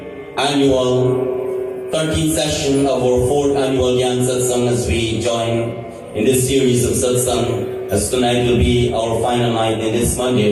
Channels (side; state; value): both; identical; correlation 1.00